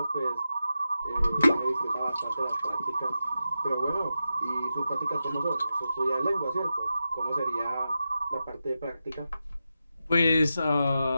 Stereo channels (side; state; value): both; inverted; correlation -0.90